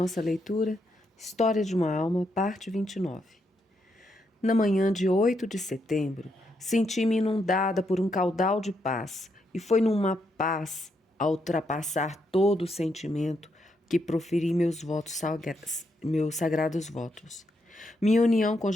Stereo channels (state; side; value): normal; both; correlation 0.79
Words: leitura, História de uma Alma, parte 29. Na manhã de 8 de setembro, senti-me inundada por um caudal de paz, e foi numa paz, a ultrapassar todo o sentimento, que proferi meus sagrados votos. Minha união com